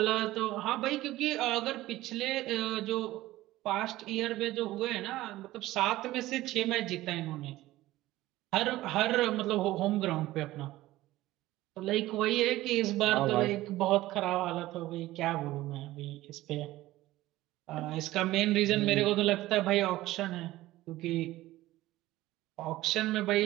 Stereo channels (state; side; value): quieter; left; 16.6 dB